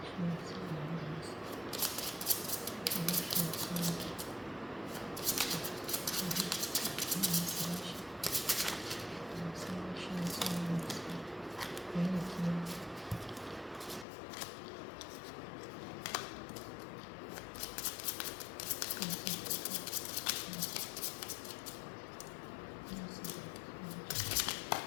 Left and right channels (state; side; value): drops out; right; at 14.1 s